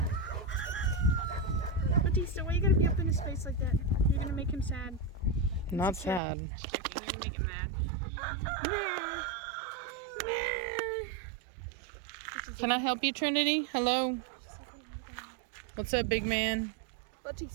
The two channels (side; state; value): left; drops out; at 6.2 s